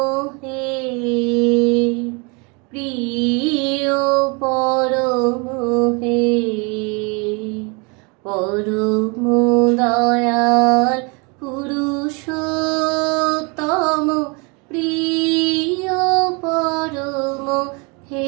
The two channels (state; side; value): quieter; left; 31.2 dB